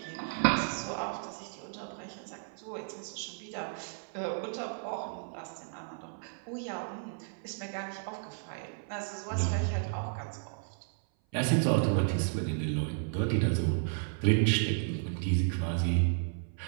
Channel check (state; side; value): silent; left; 56 dB below the other